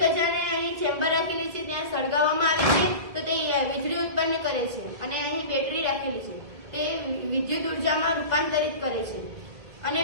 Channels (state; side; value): late; left; 1.6 ms